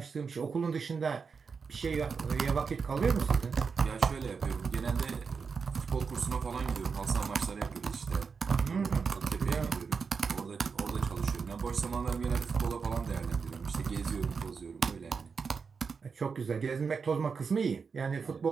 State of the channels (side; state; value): left; quieter; 5.5 dB